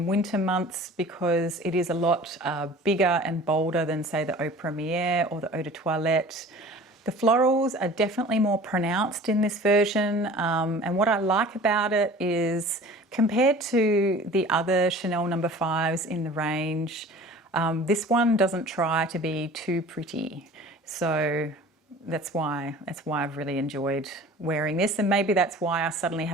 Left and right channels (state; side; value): normal; both; correlation 0.43